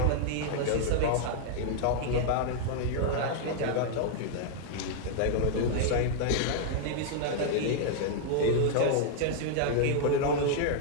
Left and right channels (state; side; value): different; both; correlation -0.01